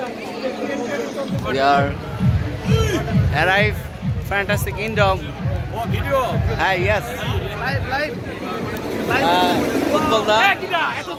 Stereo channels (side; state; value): both; identical; correlation 1.00